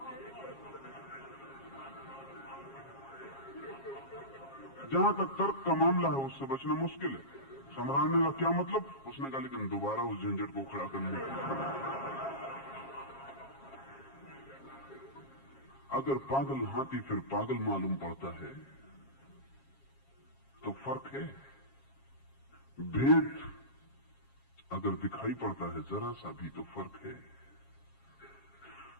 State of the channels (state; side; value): late; right; 7.4 ms